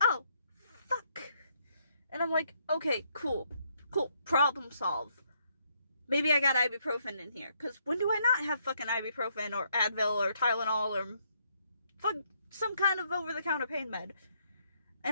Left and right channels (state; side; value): inverted; both; correlation -0.72